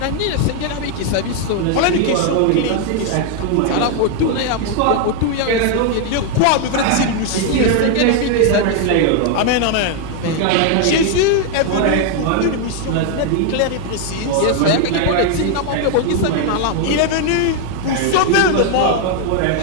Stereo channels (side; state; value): both; different; correlation 0.00